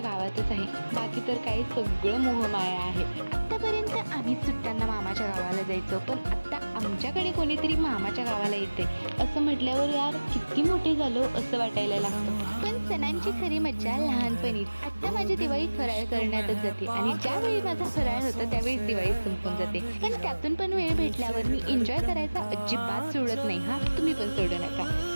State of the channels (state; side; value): inverted; both; correlation -1.00